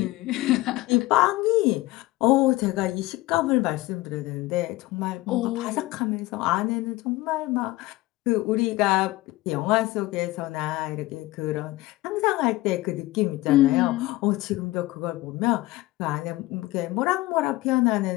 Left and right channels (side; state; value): right; quieter; 19.0 dB